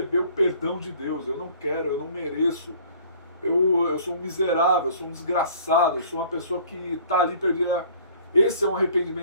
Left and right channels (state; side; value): inverted; both; correlation -0.52